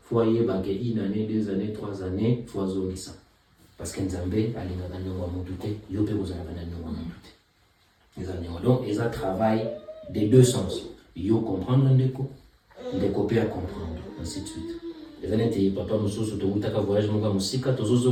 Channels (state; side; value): identical; both; correlation 1.00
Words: fo ayebake 1 année 2 années 3 années fo azongisa parce que Nzambe alingaka niongo ya motu te yo mpe kozalaka na niongo ya motu te eza niongo donc eza travail des deux sens yo comprendre ndeko mpe à comprendre ainsi de suite eza neti papa mosusu tokutaka voyage moko ya mosika